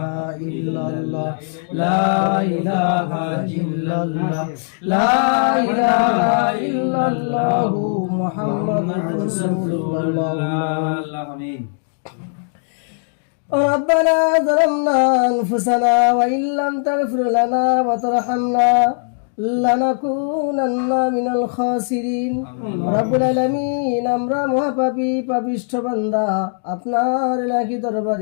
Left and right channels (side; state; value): right; silent; digital silence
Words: ইল্লাল্লাহ লা ইলাহা ইল্লাল্লাহ লা ইলাহা ইল্লাল্লাহ মুহাম্মাদুর রাসূলুল্লাহ। আমিন। ربنا ظلمنا أنفسنا وإن لم تغفر لنا وترحمنا لنكونن من الخاسرين। রব্বুল আলামিন, আমরা মহাপাপী পাপিষ্ঠ বান্দা, আপনার ইলাহি